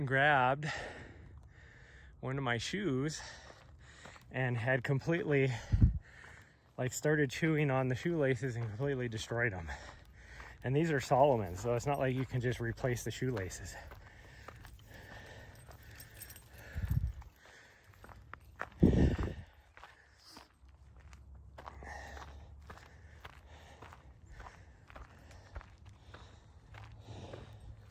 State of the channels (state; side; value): identical; both; correlation 1.00